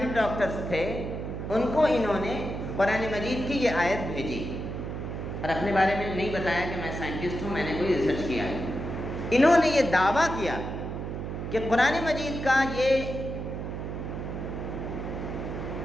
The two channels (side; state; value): right; noise; hum, 5 dB below the sound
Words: ڈاکٹرز تھے، ان کو انہوں نے قرآن مجید کی یہ آیت بھیجی، اور اپنے بارے میں نہیں بتایا کہ میں سائنٹسٹ ہوں، میں نے کوئی ریسرچ کیا ہے۔ انہوں نے یہ دعویٰ کیا کہ قرآن مجید کا یہ